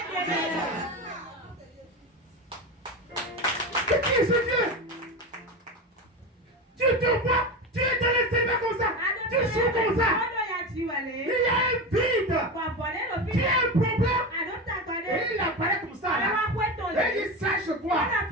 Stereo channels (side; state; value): both; normal; correlation 0.22